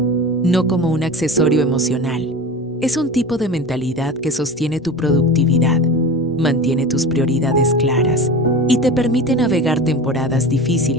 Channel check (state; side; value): normal; both; correlation 0.32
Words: no como un accesorio emocional. Es un tipo de mentalidad que sostiene tu productividad, mantiene tus prioridades claras y te permite navegar temporadas